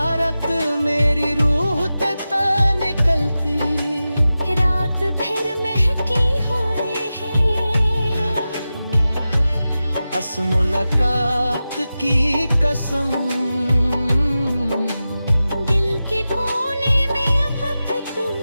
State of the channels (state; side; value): inverted; both; correlation -0.94